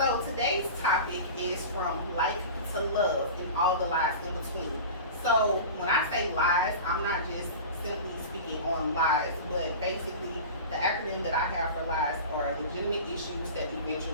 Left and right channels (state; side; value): inverted; both; correlation -0.33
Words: today's topic is from like to love and all the lies in between. So when I say lies, I'm not just simply speaking on lies, but basically the acronym that I have for lies are legitimate issues that